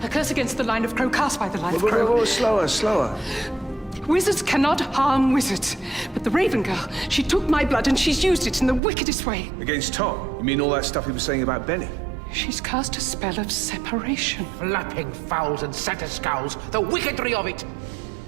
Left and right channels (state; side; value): drops out; left; at 8.8 s